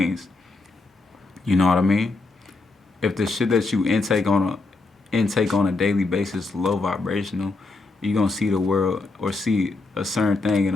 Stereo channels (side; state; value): right; quieter; 3.4 dB